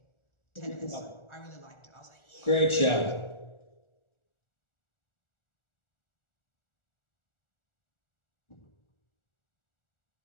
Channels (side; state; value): right; late; 1.4 ms